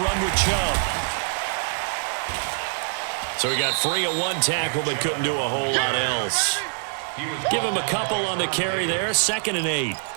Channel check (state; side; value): silent; left; digital silence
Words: run with Chubb. So he got free of 1 tackle, but couldn't do a whole lot else. Give him a couple on the carry there. 2nd and 8.